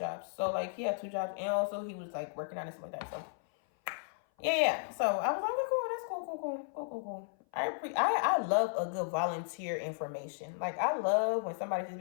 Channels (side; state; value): right; silent; 55 dB below the other